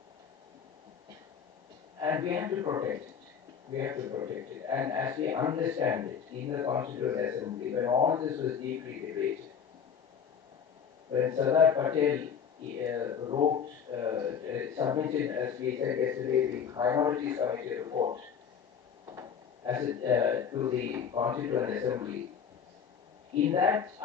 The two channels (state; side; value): quieter; right; 7.3 dB